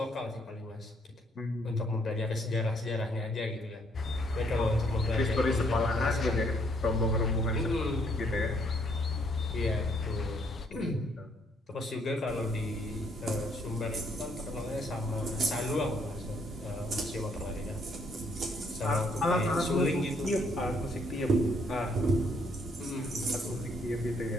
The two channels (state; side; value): normal; both; correlation 0.68